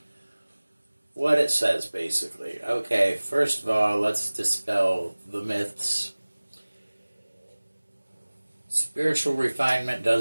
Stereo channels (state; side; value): inverted; both; correlation -1.00